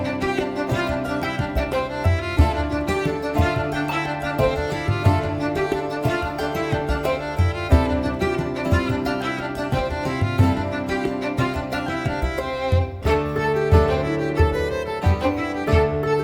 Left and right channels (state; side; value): identical; both; correlation 1.00